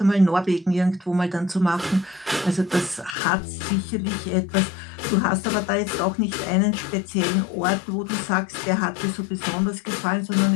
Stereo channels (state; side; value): drops out; right; at 3.2 s